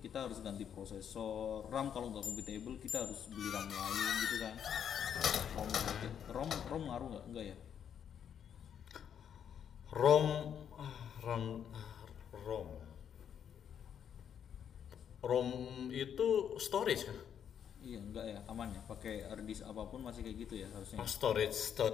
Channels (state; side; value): quieter; right; 8.6 dB